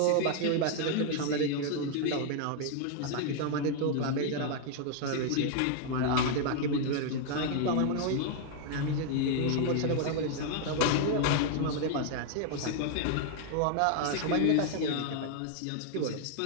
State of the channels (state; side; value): different; both; correlation 0.00